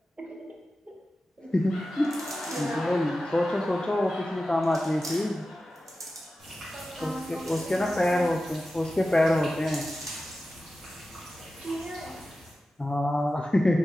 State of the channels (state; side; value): normal; both; correlation 0.94